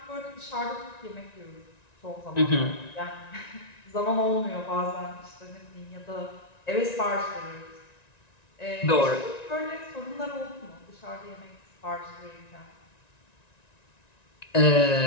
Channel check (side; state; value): right; late; 1.9 ms